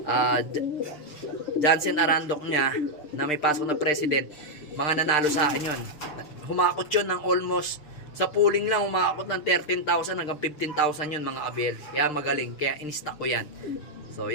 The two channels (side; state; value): right; late; 6.7 ms